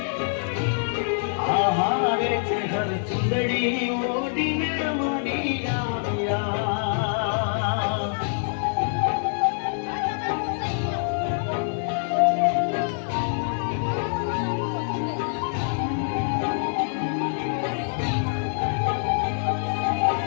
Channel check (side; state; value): right; silent; digital silence